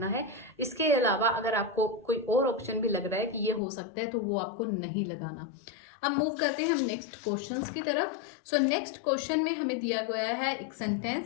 है। इसके अलावा अगर आपको कोई और ऑप्शन भी लग रहा है कि ये हो सकता है तो वो आपको नहीं लगाना। अब मूव करते हैं हम नेक्स्ट क्वेश्चंस की तरफ। सो नेक्स्ट क्वेश्चन में हमें दिया गया है एक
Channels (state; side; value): drops out; right; at 3.6 s